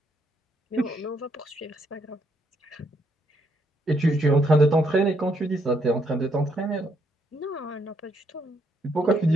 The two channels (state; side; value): normal; both; correlation 0.74